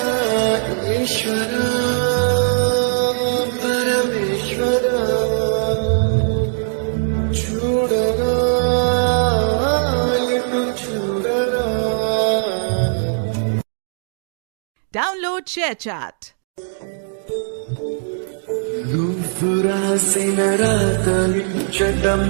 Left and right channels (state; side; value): silent; left; digital silence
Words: ఈశ్వరా పరమేశ్వరా చూడరా ఎటు చూడరా. Download ShareChat. నువ్వు రాసిన రాతలు చెడ్డ